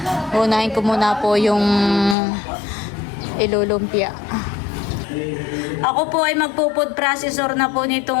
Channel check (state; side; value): drops out; right; at 2.1 s